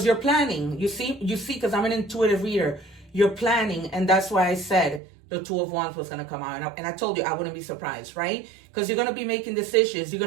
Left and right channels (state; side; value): drops out; left; at 5.0 s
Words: you're planning. You see, because I'm an intuitive reader. You're planning, and that's why I said the 2 of Wands was going to come out. And I told you I wouldn't be surprised, right? Because you're going to be making decisions. You're